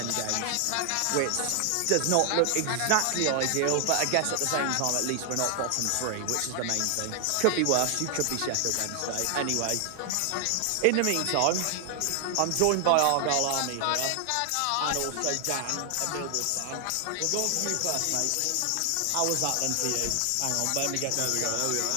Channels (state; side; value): different; both; correlation 0.00